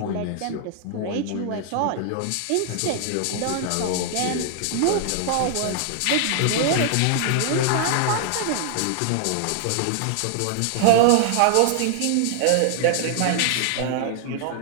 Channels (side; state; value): both; different; correlation -0.01